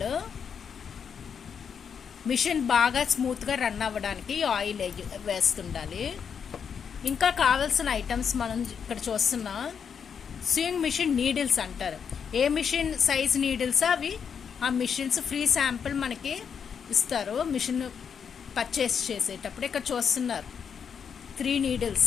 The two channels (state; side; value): quieter; right; 7.0 dB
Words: మిషన్ బాగా స్మూత్గా రన్ అవ్వడానికి ఈ ఆయిల్ వేస్తుండాలి. ఇంకా కావాల్సిన ఐటమ్స్ మనం ఇక్కడ చూస్తున్నాం. స్వింగ్ మిషన్ నీడిల్స్ అంటారు. ఏ మిషన్ సైజ్ నీడిల్స్ అవి ఆ మిషన్స్ ఫ్రీ శాంపిల్ మనకి ఇస్తారు మిషన్ పర్చేస్ చేసేటప్పుడు. ఇక్కడ చూస్తున్నారు 3 నీడిల్స్,